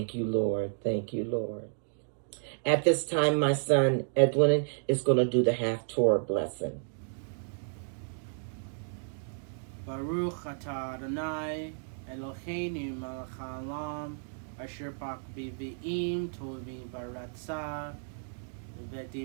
you, Lord. Thank you, Lord. At this time, my son Edwin is going to do the half-Torah blessing. Baruch atah Adonai Eloheinu melech haolam asher bak b'vi'im tovim baratzah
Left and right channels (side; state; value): left; silent; digital silence